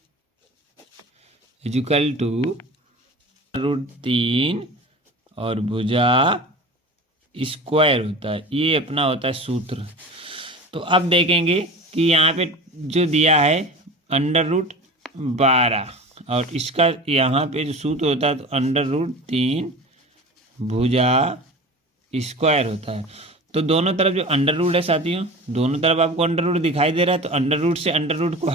इक्वल टू √3 और भुजा स्क्वायर होता है, ये अपना होता है सूत्र। तो अब देखेंगे कि यहाँ पे जो दिया है √12, और इसका यहाँ पे जो सूत्र होता है तो √3 भुजा स्क्वायर होता है। तो दोनों तरफ जो अंडर रूट है साथियों, दोनों तरफ आपको अंडर रूट दिखाई दे रहा है, तो अंडर रूट से अंडर रूट को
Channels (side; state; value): both; normal; correlation 0.34